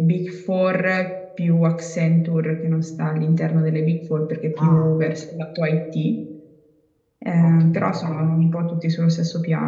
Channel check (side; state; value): both; identical; correlation 1.00